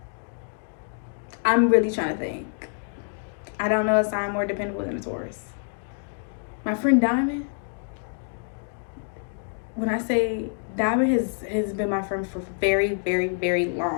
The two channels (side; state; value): right; silent; digital silence